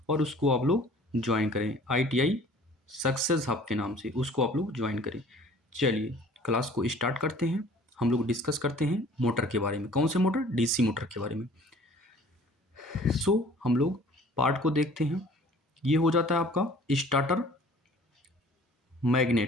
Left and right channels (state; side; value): normal; both; correlation 0.50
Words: और उसको आप लोग ज्वाइन करें। ITI सक्सेस हब के नाम से उसको आप लोग ज्वाइन करें। चलिए क्लास को स्टार्ट करते हैं। हम लोग डिस्कस करते हैं मोटर के बारे में। कौन से मोटर? DC मोटर के बारे में। हम लोग पार्ट को देखते हैं। ये हो जाता है आपका स्टार्टर